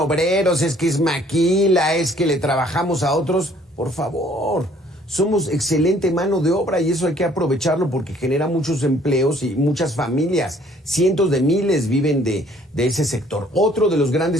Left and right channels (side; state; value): both; normal; correlation 0.59